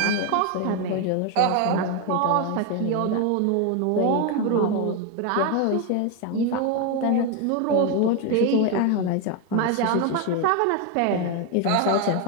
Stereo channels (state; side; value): different; both; correlation 0.01